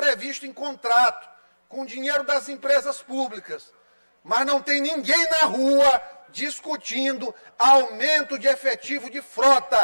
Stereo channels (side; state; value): both; inverted; correlation -1.00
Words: em contrato, com dinheiro das empresas públicas. Mas não tem ninguém na rua discutindo aumento de efetivo de